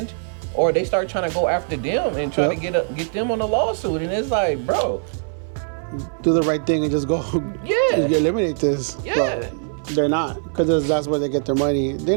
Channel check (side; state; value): left; silent; 60 dB below the other